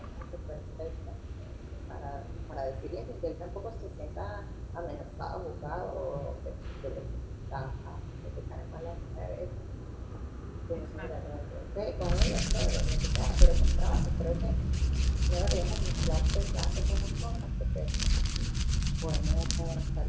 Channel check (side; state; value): both; identical; correlation 1.00